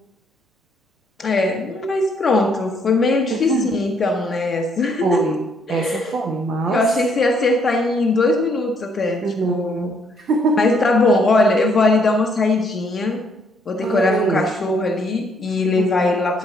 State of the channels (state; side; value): normal; both; correlation 0.69